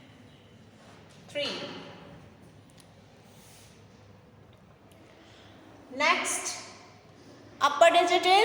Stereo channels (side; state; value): both; identical; correlation 1.00